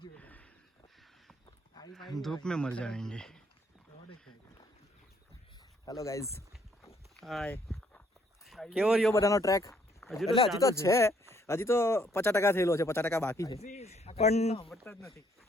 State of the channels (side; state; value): both; normal; correlation 0.67